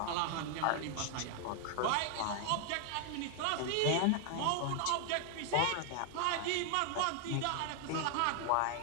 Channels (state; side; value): different; both; correlation 0.00